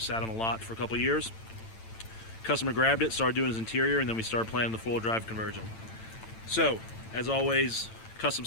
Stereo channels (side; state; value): right; late; 9.0 ms